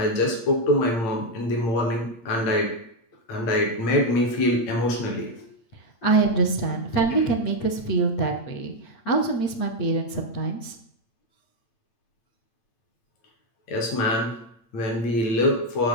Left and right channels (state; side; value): late; right; 8.7 ms